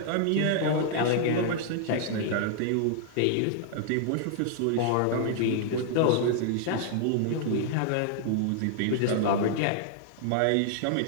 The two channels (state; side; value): different; both; correlation -0.01